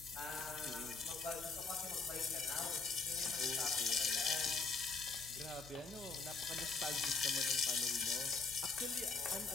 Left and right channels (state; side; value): quieter; right; 4.3 dB